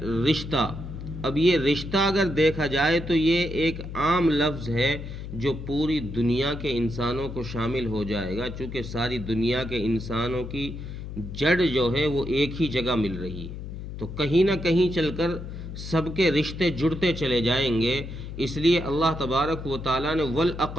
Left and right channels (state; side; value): noise; left; hum, 9 dB below the sound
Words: رشتہ، اب یہ رشتہ اگر دیکھا جائے تو یہ ایک عام لفظ ہے جو پوری دنیا کے انسانوں کو شامل ہو جائے گا، چونکہ ساری دنیا کے انسانوں کی جڑ جو ہے وہ ایک ہی جگہ مل رہی ہے، تو کہیں نہ کہیں چل کر سب کے رشتے جڑتے چلے جائیں گے۔ اس لیے اللہ تبارک و تعالیٰ نے